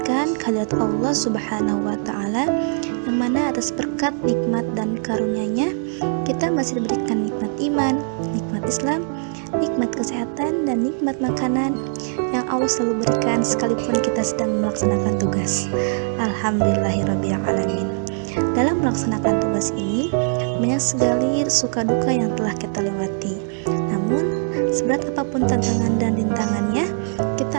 kehadirat Allah subhanahu wa ta'ala, yang mana atas berkat, nikmat, dan karunia-Nya kita masih diberikan nikmat iman, nikmat Islam, nikmat kesehatan, dan nikmat makanan yang Allah selalu berikan sekalipun kita sedang melaksanakan tugas. Alhamdulillahirrabbilalamin. Dalam melaksanakan tugas ini banyak sekali suka duka yang telah kita lewati. Namun seberat apapun tantangan dan rintangannya,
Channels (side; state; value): left; silent; digital silence